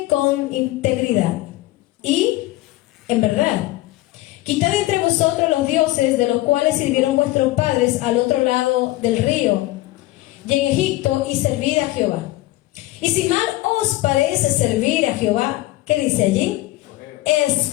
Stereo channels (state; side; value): quieter; right; 17.6 dB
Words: con integridad y en verdad. Quitad entre vosotros los dioses de los cuales sirvieron vuestros padres al otro lado del río y en Egipto, y servid a Jehová. Y si mal os parece servir a Jehová, ¿qué dice allí?